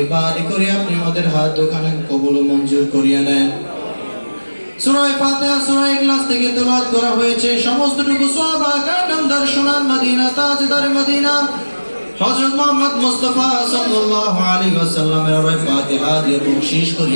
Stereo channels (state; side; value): inverted; both; correlation -1.00